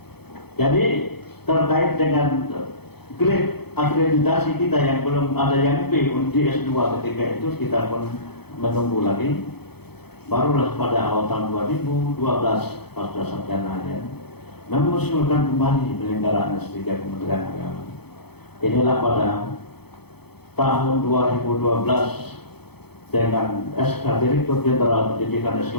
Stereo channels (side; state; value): right; late; 0.97 ms